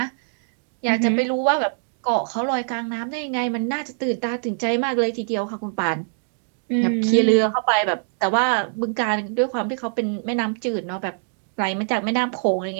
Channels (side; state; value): left; silent; digital silence